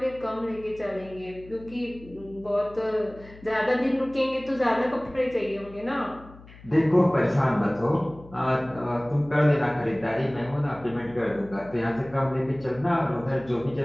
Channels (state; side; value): noise; left; hum, 20 dB below the sound